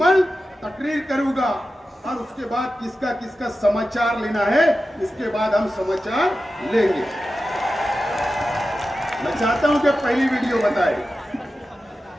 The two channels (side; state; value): both; normal; correlation 0.93